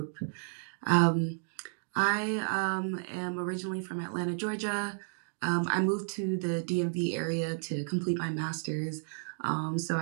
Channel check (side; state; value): left; silent; digital silence